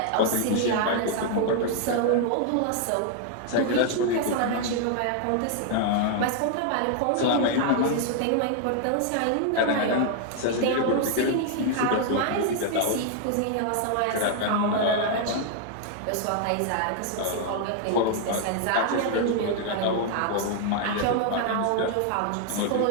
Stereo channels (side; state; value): both; different; correlation 0.00